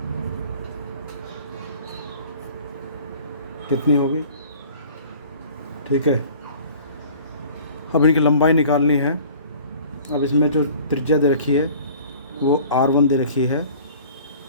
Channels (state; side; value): inverted; both; correlation -0.47